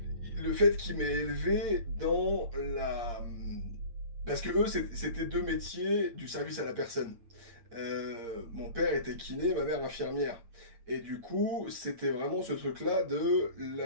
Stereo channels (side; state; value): left; late; 8.6 ms